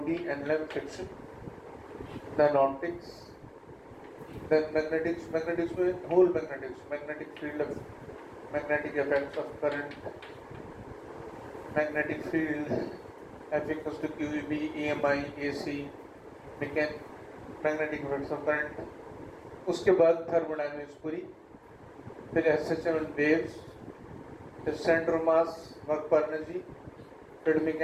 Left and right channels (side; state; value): both; identical; correlation 1.00